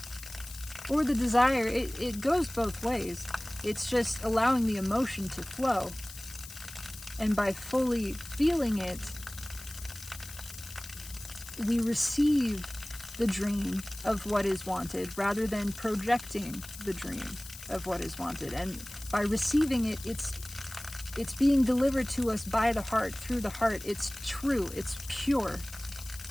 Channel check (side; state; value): left; noise; hiss, 14 dB below the sound